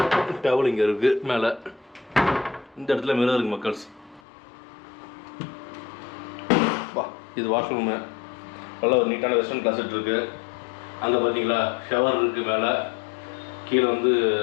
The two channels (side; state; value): right; drops out; at 4.2 s